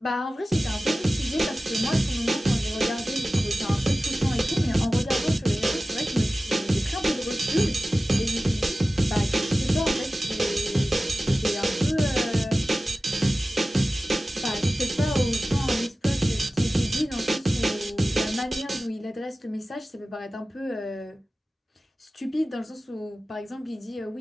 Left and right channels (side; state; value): both; normal; correlation 0.96